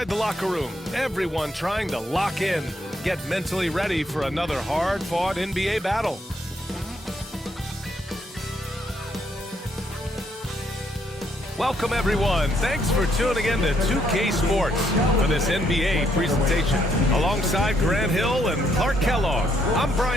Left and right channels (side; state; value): both; normal; correlation 0.72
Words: the locker room, everyone trying to lock in, get mentally ready for another hard-fought NBA battle. Welcome, everyone. Thanks for tuning in to 2K Sports for this NBA presentation. Alongside Grant Hill and Clark Kellogg, I'm